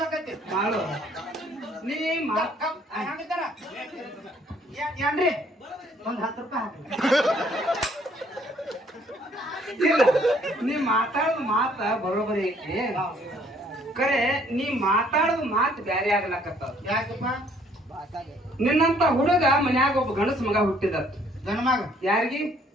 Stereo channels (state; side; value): normal; both; correlation 0.62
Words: ಮಾಡು ನೀ ಹಂಗಿದ್ದಾರ ಏನ್ರಿ ಒಂದ್ 10 ರೂಪಾಯಿ ಇಲ್ಲ ನೀ ಮಾತಾಡೋದು ಮಾತ ಬರೋಬರಿ ಐತಿ ಕರೆ ನೀ ಮಾತಾಡೋದು ಮಾತು ಬ್ಯಾರೆ ಆಗ್ಲಕತ್ತಾವ ಯಾಕಪ್ಪ ನಿನ್ನಂತ ಹುಡುಗ ಮನ್ಯಾಗ ಒಬ್ಬ ಗಣಸ ಮಗ ಹುಟ್ಟಿದ ಗಂಡ ಮಗ ಯಾರಿಗಿ